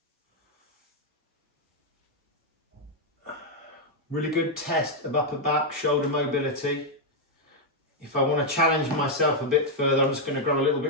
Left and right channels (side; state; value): both; normal; correlation -0.01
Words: Really good test of upper back, shoulder mobility. If I want to challenge myself a bit further, I'm just going to grab a little